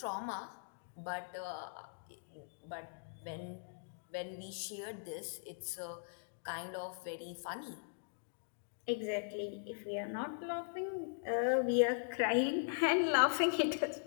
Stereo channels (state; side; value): silent; right; digital silence